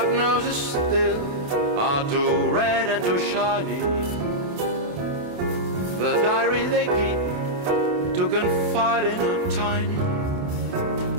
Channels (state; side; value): late; left; 28 ms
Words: noses still are too red and too shiny. The diary they keep to confide in are tiny.